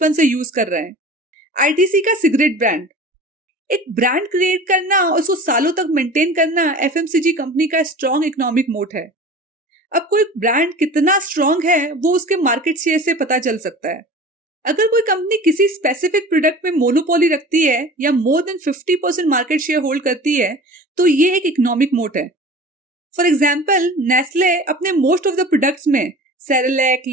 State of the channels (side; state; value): both; normal; correlation 0.39